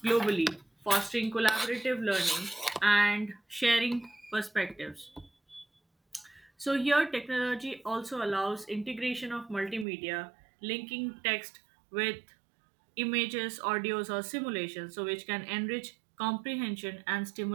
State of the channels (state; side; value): drops out; left; at 9.9 s